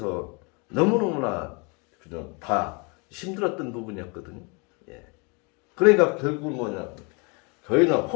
너무너무나 그냥 다 힘들었던 부분이었거든요. 예. 그러니까 결국은 뭐냐, 저희는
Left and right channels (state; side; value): quieter; right; 31.5 dB